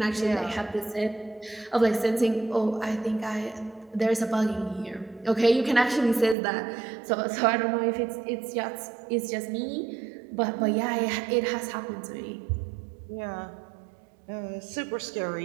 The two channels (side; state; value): left; drops out; at 6.4 s